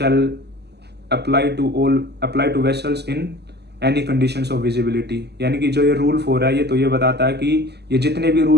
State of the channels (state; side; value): late; left; 0.49 ms